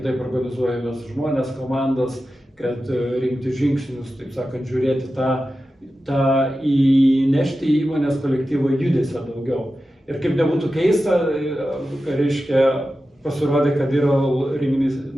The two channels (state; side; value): normal; both; correlation 0.93